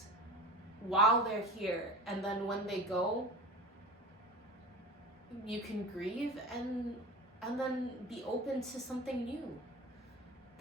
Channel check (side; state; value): both; normal; correlation 0.33